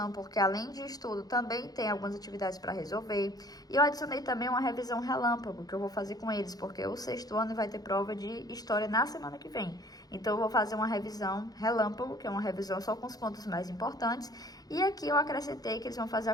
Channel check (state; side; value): late; right; 0.19 ms